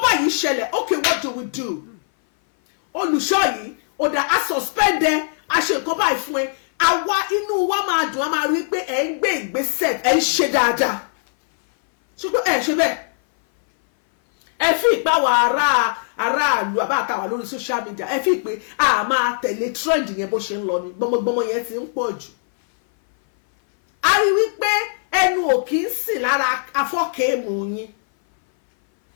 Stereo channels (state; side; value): silent; right; 59 dB below the other